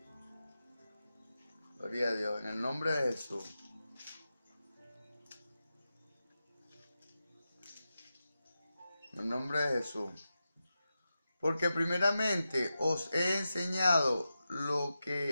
Gloria a Dios, en el nombre de Jesús. En el nombre de Jesús. Porque primeramente os he enseñado lo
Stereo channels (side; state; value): both; inverted; correlation -0.91